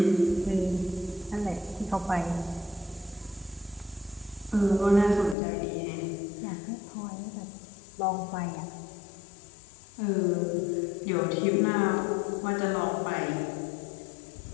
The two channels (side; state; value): right; drops out; at 5.4 s